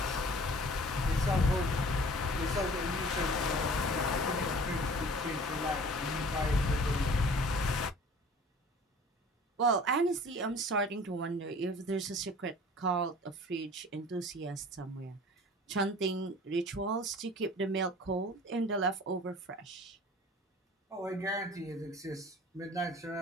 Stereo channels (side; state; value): both; normal; correlation 0.47